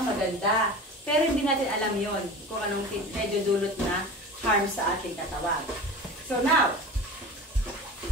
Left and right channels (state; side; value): normal; both; correlation 0.34